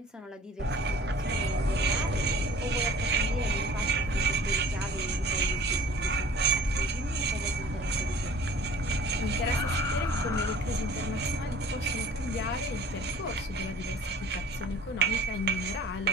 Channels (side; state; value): both; normal; correlation 0.48